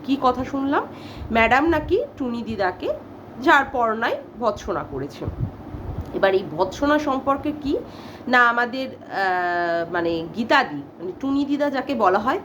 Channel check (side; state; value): both; identical; correlation 1.00